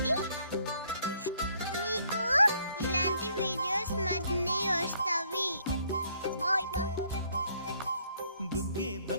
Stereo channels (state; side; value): inverted; both; correlation -0.66